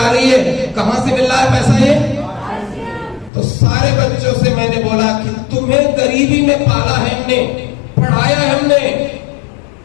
रही है। कहां से मिल रहा है पैसा ये? तो सारे बच्चों से मैंने बोला कि तुम्हें गरीबी में पाला है हमने, पढ़ाया है हमने।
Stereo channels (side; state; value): right; drops out; at 3.3 s